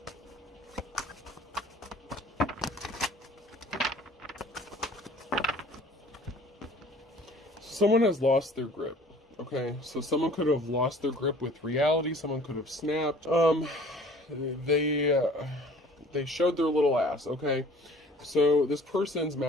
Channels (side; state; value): both; normal; correlation 0.50